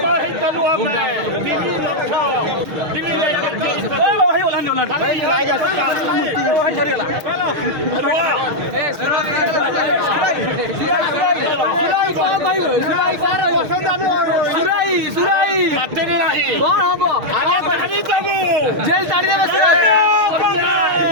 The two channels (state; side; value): late; left; 6.4 ms